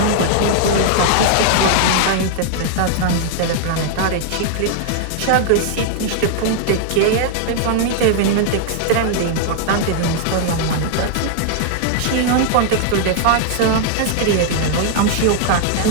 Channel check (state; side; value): different; both; correlation 0.00